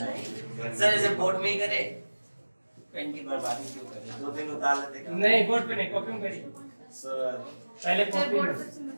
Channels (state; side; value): inverted; both; correlation -1.00